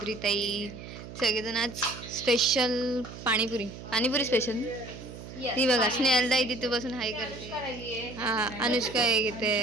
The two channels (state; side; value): noise; right; hum, 13 dB below the sound